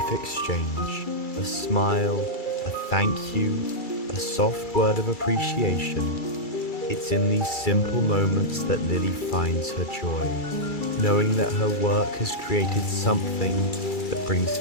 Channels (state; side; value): late; right; 2.3 ms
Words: exchange, a smile, a thank you, a soft word of appreciation. It's in these simple moments that Lily finds her joy, knowing that her work has created something that brings